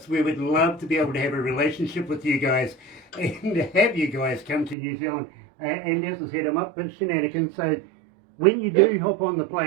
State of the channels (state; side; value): drops out; left; at 4.8 s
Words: We would love to be able to have a relationship with you guys and have you guys come to New Zealand. And as I said, I'm up for shenanigans. So when you do hop on the